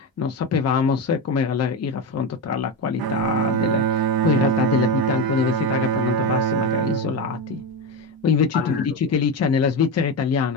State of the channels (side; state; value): both; normal; correlation 0.17